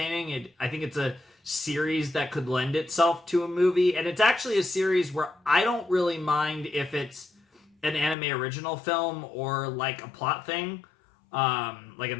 I think it's a series that could lend itself to a movie, and it's actually a series where I don't really mind if it's an anime original film or like a plot thing, like a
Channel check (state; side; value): drops out; right; at 8.2 s